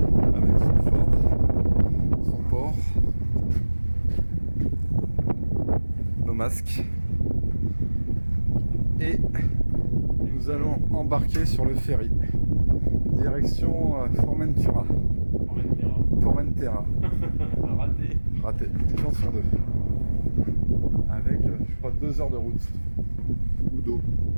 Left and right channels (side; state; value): both; inverted; correlation -1.00